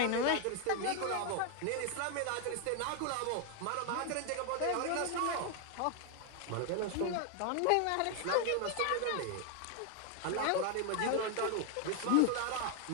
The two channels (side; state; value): both; different; correlation 0.00